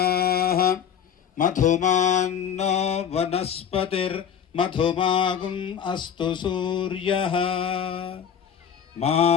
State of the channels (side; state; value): right; quieter; 8.2 dB